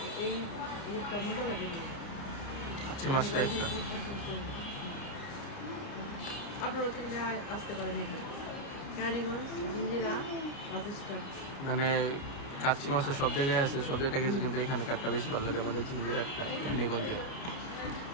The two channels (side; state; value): right; late; 29 ms